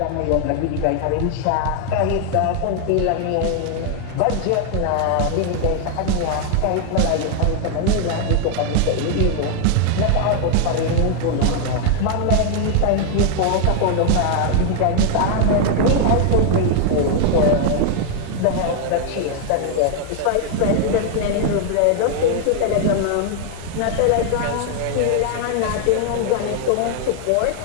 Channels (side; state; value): both; different; correlation 0.00